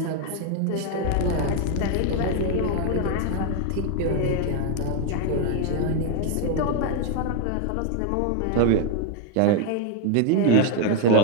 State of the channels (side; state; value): both; different; correlation 0.01